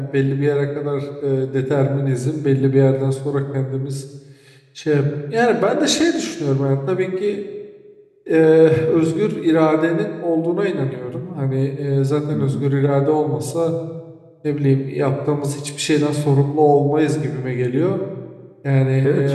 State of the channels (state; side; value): identical; both; correlation 1.00